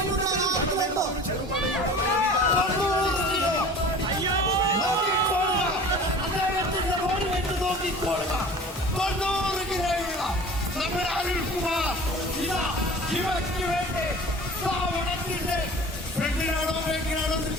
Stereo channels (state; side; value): normal; both; correlation 0.41